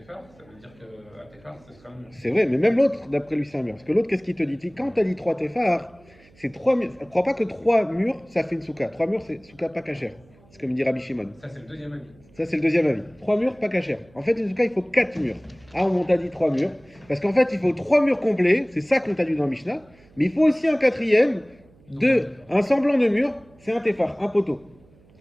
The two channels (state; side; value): noise; right; hum, 29 dB below the sound